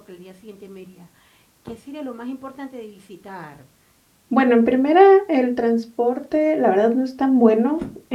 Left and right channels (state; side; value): identical; both; correlation 1.00